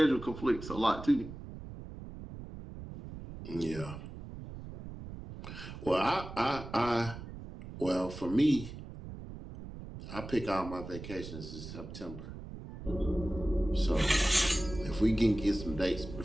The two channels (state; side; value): noise; right; rumble, 12 dB below the sound